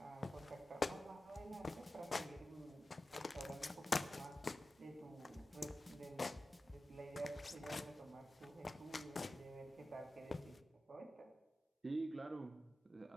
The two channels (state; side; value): normal; both; correlation 0.94